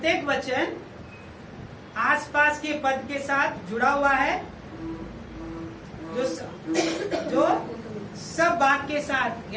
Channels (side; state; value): both; identical; correlation 1.00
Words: वचन आसपास के पद के साथ जुड़ा हुआ है, जो सब भाग के साथ